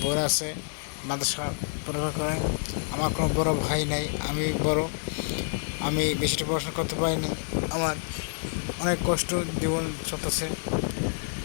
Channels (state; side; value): silent; right; digital silence